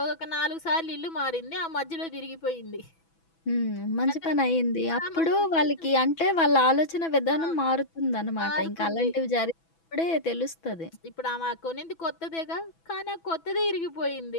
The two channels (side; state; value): right; late; 6.1 ms